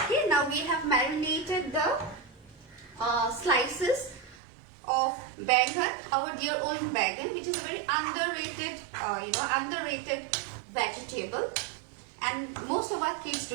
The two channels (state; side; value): drops out; left; at 4.4 s